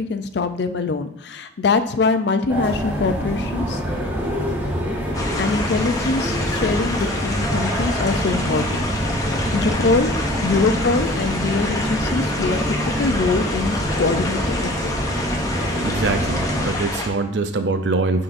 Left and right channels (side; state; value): both; normal; correlation 0.43